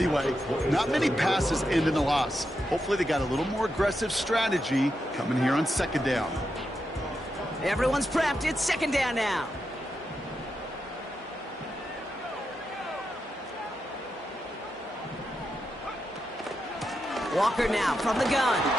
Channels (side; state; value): both; normal; correlation 0.86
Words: Not many passes end in a loss. Hopefully they got a little more aggressive strategy coming here on second down. Everyone's prepped. It's second down now. Walker now from the gun.